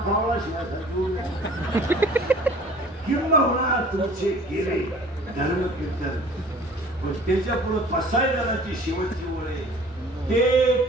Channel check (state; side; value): normal; both; correlation 0.48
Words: शिवाय किंबहुना तुमचे गेले धर्म कीर्तन. पण त्याच्या पुढे पसायदानाची शेवटची ओळ आहे, ते